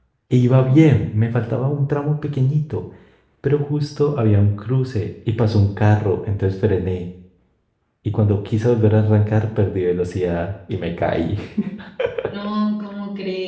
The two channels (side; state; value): both; identical; correlation 1.00